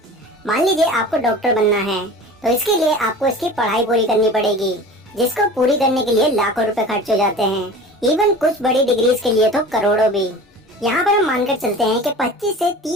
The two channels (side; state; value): both; normal; correlation 0.38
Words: मान लीजिए आपको डॉक्टर बनना है, तो इसके लिए आपको इसकी पढ़ाई पूरी करनी पड़ेगी, जिसको पूरी करने के लिए लाखों रुपए खर्च हो जाते हैं। इवन कुछ बड़ी डिग्रीज के लिए तो करोड़ों भी। यहाँ पर हम मानकर चलते हैं कि 25 से